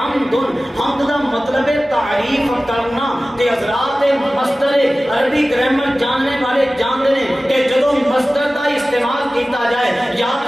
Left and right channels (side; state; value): both; normal; correlation 0.97